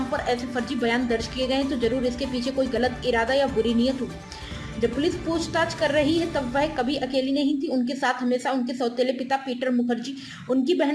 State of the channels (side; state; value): both; identical; correlation 1.00